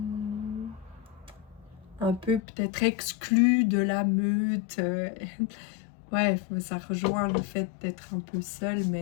un peu peut-être exclu de la meute. Ouais, ça rejoint le fait d'être un peu seul,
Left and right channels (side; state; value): right; drops out; at 2.4 s